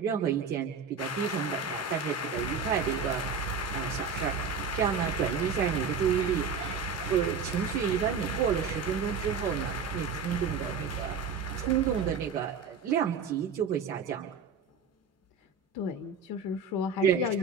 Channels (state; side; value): quieter; left; 5.2 dB